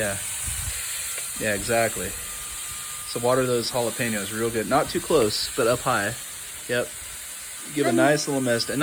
exactly. So water those jalapenos real good. Not too close, but up high. Yep. Give a nice little mist, and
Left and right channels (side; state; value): both; identical; correlation 1.00